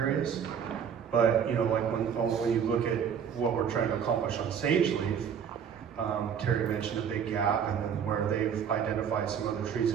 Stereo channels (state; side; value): quieter; left; 7.8 dB